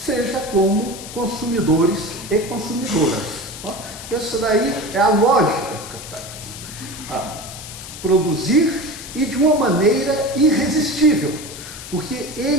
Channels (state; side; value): noise; left; hiss, 12 dB below the sound